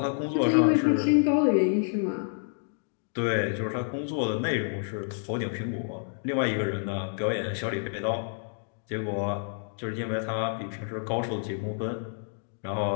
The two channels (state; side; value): silent; right; 59 dB below the other